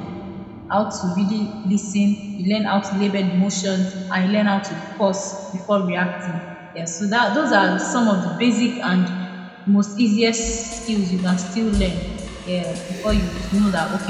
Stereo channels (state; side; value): identical; both; correlation 1.00